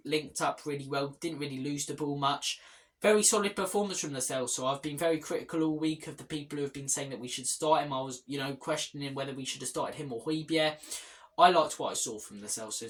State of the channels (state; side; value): identical; both; correlation 1.00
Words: Linked up really well. Didn't really lose the ball much. Very solid performance from Lo Celso. I've been very critical all week of the people who have been saying that we should start him. I was, questioning whether we should have started him or Højbjerg. I liked what I saw from Lo